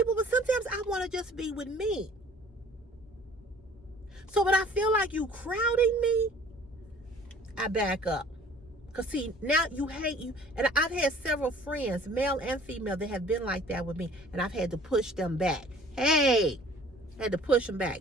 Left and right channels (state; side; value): normal; both; correlation 0.51